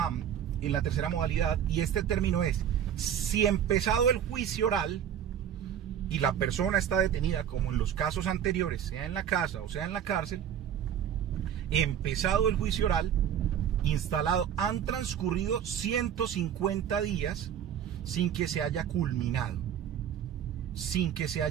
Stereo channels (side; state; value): left; quieter; 9.3 dB